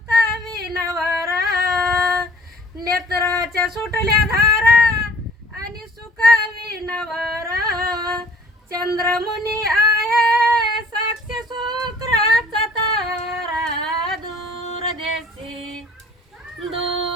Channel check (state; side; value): normal; both; correlation 0.53